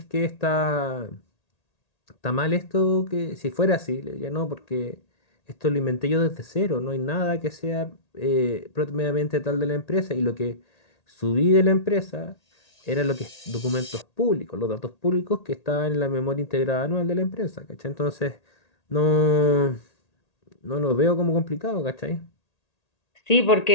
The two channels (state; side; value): late; right; 1.8 ms